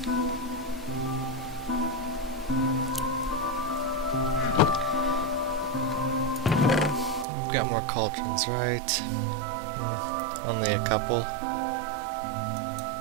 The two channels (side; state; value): left; drops out; at 7.2 s